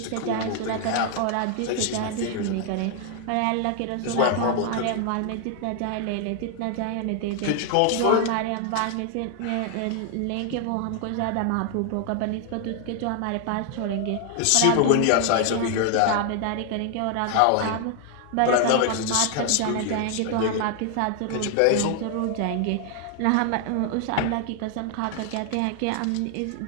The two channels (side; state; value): both; different; correlation 0.00